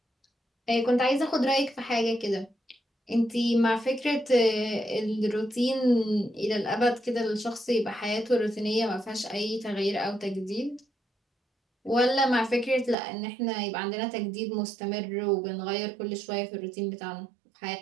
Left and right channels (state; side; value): drops out; left; at 13.0 s